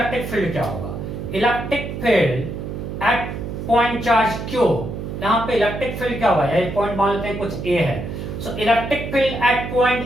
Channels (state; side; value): noise; right; hum, 6 dB below the sound